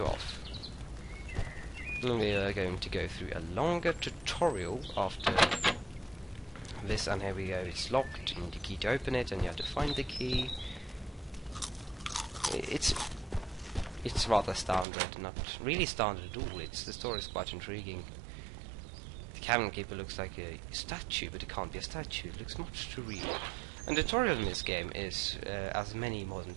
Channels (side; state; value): left; drops out; at 14.9 s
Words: off. We are going to go through a longer tutorial after this, and here we go. It's locked, you need a key to open it, and you have to find the key. It's rather standard, not really standard at all. The story is quite intriguing. The cabin keeper looks like a statue, but it can't be a statue. It looks much too real. And the tutorial in this game is, as many modern